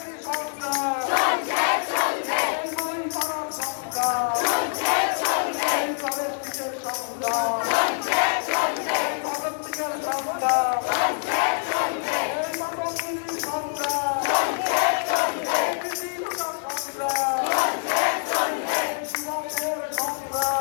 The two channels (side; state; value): right; silent; digital silence